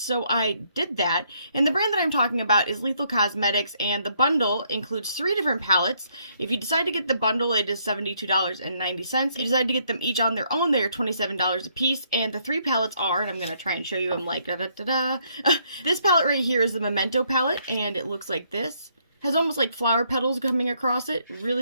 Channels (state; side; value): inverted; both; correlation -0.71